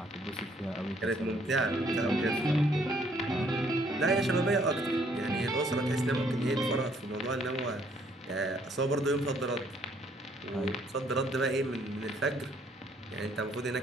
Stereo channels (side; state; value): both; normal; correlation 0.65